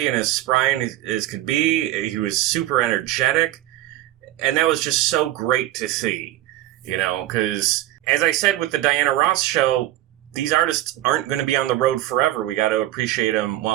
and as spry as could be. He was super energetic, and that was just so great to see, because, as I said with the Diana Ross show, these artists aren't going to be on the road forever. We got to appreciate them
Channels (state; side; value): quieter; left; 14.8 dB